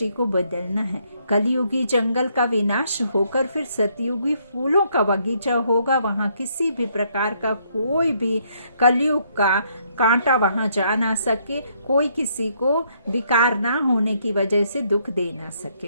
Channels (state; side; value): inverted; both; correlation -0.71